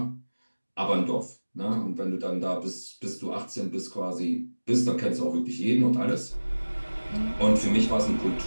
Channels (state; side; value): inverted; both; correlation -1.00